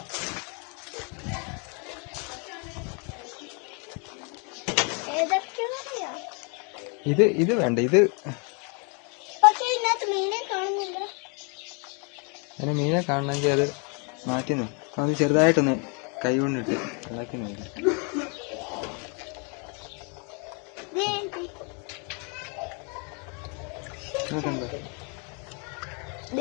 ഇത് വേണ്ട. ഇത് അതിന് മീനെ കാണണമെങ്കിൽ അത് മാറ്റി അത് ചെറുതായിട്ടൊന്ന് കൈ കൊണ്ടിട്ട് ഇളക്കി നോക്കി.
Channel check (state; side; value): quieter; right; 35.4 dB